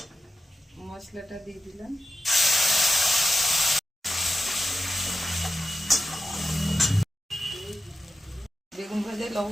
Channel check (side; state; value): both; normal; correlation 0.91